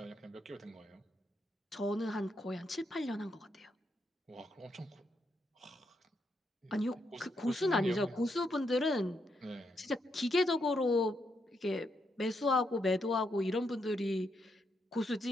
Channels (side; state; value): both; normal; correlation 0.79